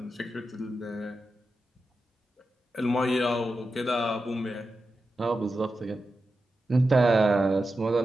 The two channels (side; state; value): both; normal; correlation 0.90